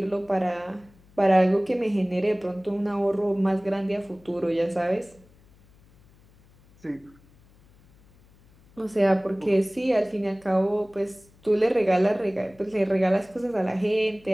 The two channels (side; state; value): left; noise; hum, 29 dB below the sound